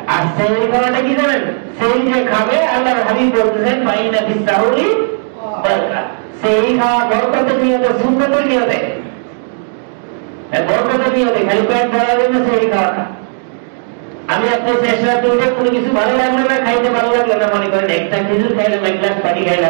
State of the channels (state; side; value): silent; left; digital silence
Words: আর সেহরি খাওয়াটা কি জানেন? সেহরি যে খাবে আল্লাহর হাবিব বলতেছেন ফাইন্না ফিস-সাহুরি বারাকাতুন, সেহরি খাওয়া বরকতের নিয়তে, সুন্নতের নিয়তে। বরকত নিয়তে খালি পেট ভরার জন্য সেহরি খাওয়া না। আমি আপনি শেষ রাতে উঠে কোনো কিছু ভালো লাগলো না, খাইতে ভালো লাগলো না, মনে করেন একটা খেজুর খাইলাম, এক গ্লাস পানি